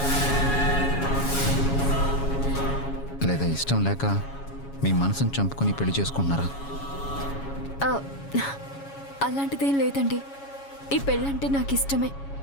లేదా ఇష్టం లేక మీ మనసును చంపుకొని పెళ్లి చేసుకుంటున్నారా? ఆ, అలాంటిదేం లేదండి. ఈ పెళ్ళంటే నాకు ఇష్టమే.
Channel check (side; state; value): right; late; 7.2 ms